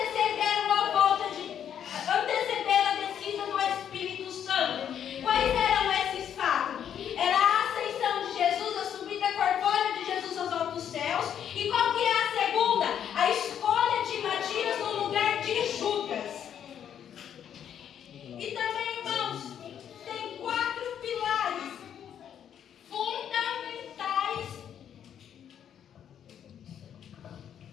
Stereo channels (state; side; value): quieter; right; 9.2 dB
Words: a descida do Espírito Santo. Quais eram esses fatos? Era a ascensão de Jesus, a subida corpórea de Jesus aos altos céus. E qual que é a segunda? A escolha de Matias no lugar de Judas. E também, irmãos, tem 4 pilares fundamentais.